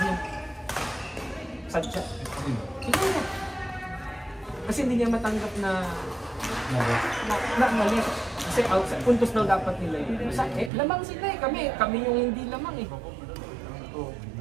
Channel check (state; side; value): drops out; left; at 10.7 s